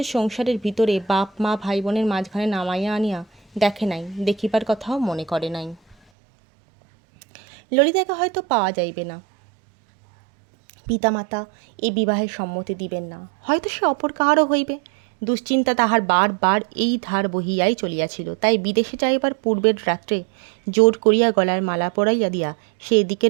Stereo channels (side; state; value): left; drops out; at 6.0 s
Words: সংসারের ভিতরে বাপ মা ভাই বোনের মাঝখানে নামাইয়া আনিয়া দেখে নাই, দেখিবার কথাও মনে করে নাই। ললিতাকে হয়তো পাওয়া যাইবে না, পিতামাতা এই বিবাহের সম্মতি দিবেন না, হয়তো সে অপর কাহারও হইবে, দুশ্চিন্তা তাহার বার এই ধার বহিয়াই চলিয়াছিল। তাই বিদেশে যাইবার পূর্বের রাত্রে জোর করিয়া গলার মালা পরাইয়া দিয়া সে